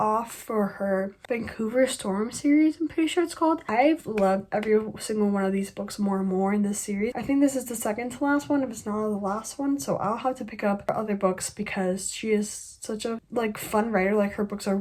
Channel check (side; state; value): both; identical; correlation 1.00